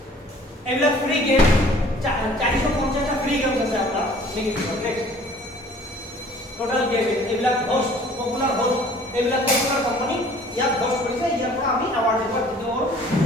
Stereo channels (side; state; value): both; normal; correlation 0.52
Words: এগুলা ফ্রি গেম 450টা ফ্রি গেমস আছে আপনার নেক্সট টোটাল গেম এগুলা হোস্ট পপুলার হোস্ট এগুলা পপুলার কোম্পানি ইয়াত হোস্ট কৰিছে ইয়াৰ পৰা আমি অ্যাওয়ার্ড দিব